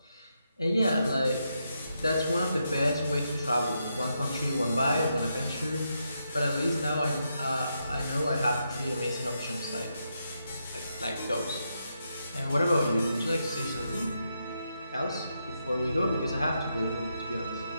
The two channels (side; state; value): both; inverted; correlation -0.82